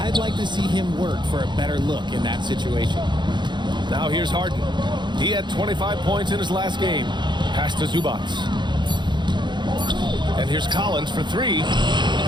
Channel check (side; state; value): left; late; 0.22 ms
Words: like to see him work for a better look in that situation. Now here's Harden. He had 25 points in his last game. Pass to Zubats. And here's Collins for 3.